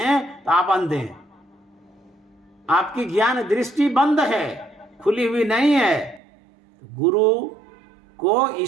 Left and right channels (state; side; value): drops out; left; at 6.2 s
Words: तो आप अंधे हैं, आपकी ज्ञान दृष्टि बंद है, खुली हुई नहीं है। गुरु को